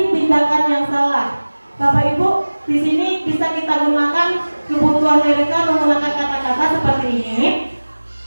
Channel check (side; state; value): both; inverted; correlation -1.00